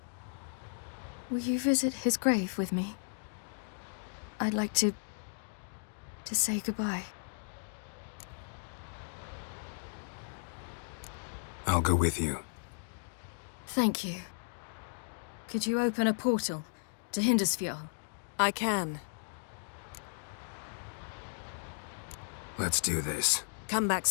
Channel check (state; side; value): silent; right; digital silence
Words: Will you visit his grave with me? I'd like to say goodbye. I'll go with you. Thank you. Could you open a portal to Hindersfjall? I can. Let's do this. Come back